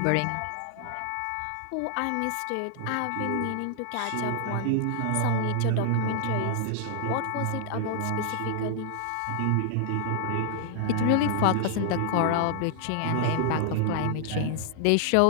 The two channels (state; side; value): different; both; correlation 0.00